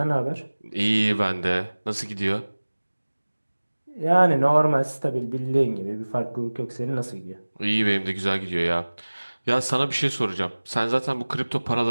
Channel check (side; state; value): both; inverted; correlation -1.00